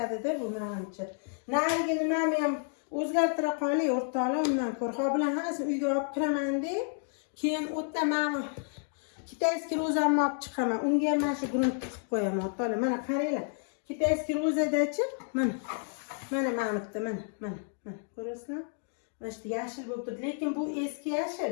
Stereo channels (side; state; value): right; silent; 57 dB below the other